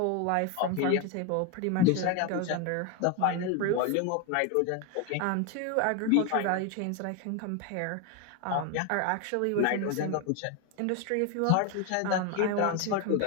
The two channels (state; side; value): different; both; correlation 0.02